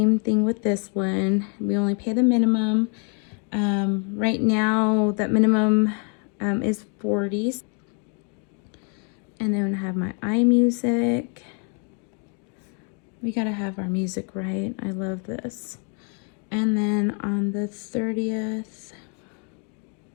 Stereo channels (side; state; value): right; quieter; 38.9 dB